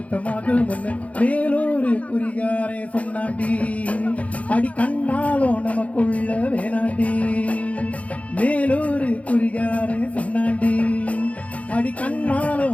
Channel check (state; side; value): late; right; 0.066 ms